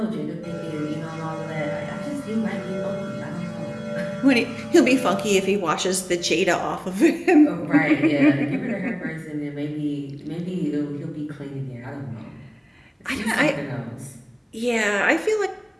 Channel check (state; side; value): identical; both; correlation 1.00